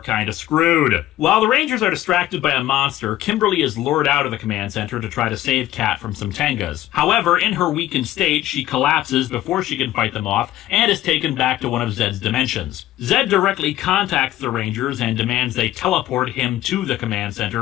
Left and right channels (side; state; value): right; quieter; 14.3 dB